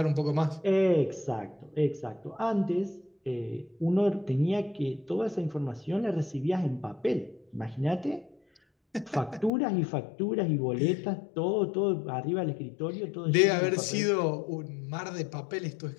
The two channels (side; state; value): right; drops out; at 9.5 s